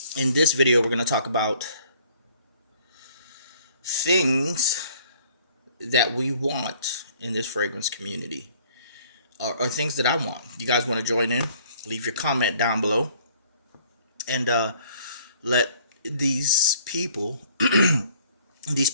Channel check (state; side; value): inverted; both; correlation -0.59